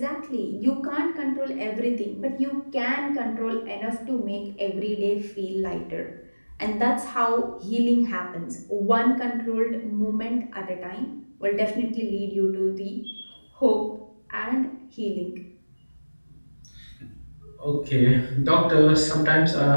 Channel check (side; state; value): both; inverted; correlation -1.00